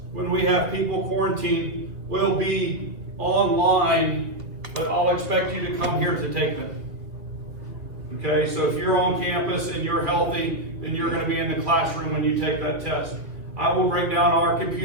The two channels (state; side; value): late; left; 2.6 ms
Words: when we have people quarantined, will be online, but I'll expect you to come here to take them. Okay, so if you're on campus and you're healthy, then you're going to be in the classroom when you take that test. I will bring down our